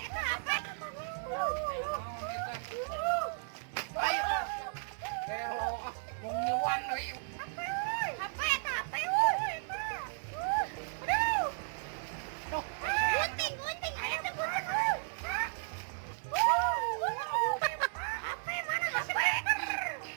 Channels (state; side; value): silent; left; digital silence